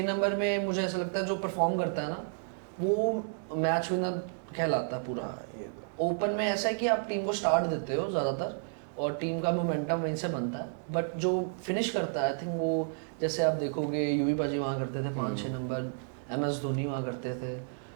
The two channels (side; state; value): left; silent; digital silence